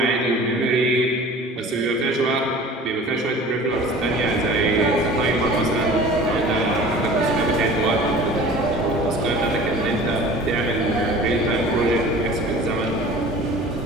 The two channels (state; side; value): normal; both; correlation 0.42